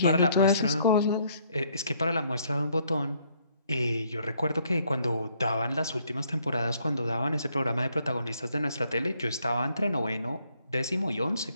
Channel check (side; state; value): both; inverted; correlation -0.67